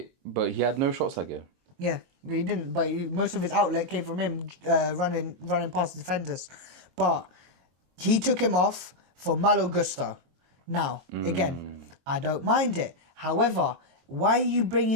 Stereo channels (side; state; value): left; late; 22 ms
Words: but he had no shots that game. Yeah, he didn't. But most of his outlet came from him running past the defenders. But he took him off for Malo Gusto. Now, again, I don't mind it. However, why are you